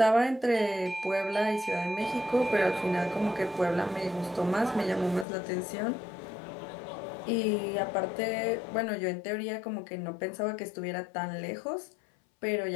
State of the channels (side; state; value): right; drops out; at 5.2 s